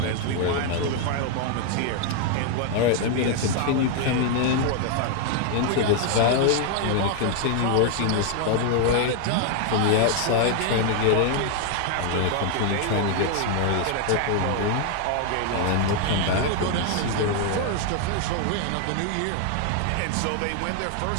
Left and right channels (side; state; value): both; different; correlation 0.00